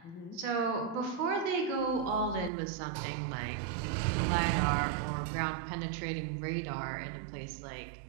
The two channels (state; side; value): drops out; left; at 2.5 s